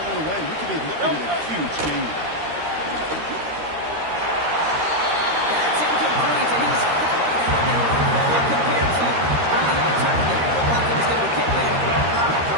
one away. We could be looking at a huge game. That's incomplete, and he's happy to have it compared to the alternative. Like it's going to be kicked there.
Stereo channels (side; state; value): left; late; 13 ms